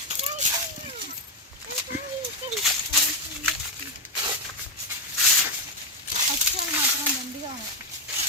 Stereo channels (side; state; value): both; normal; correlation 0.05